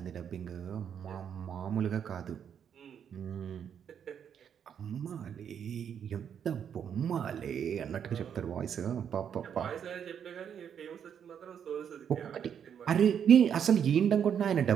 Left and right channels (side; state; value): left; quieter; 8.3 dB